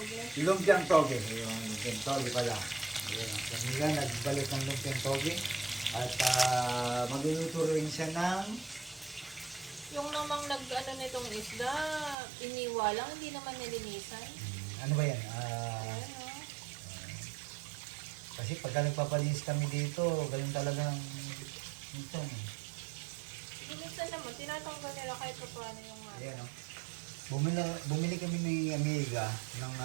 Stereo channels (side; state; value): left; drops out; at 12.2 s